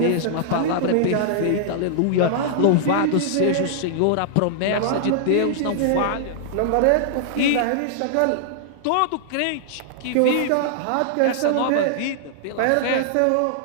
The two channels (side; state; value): both; different; correlation -0.01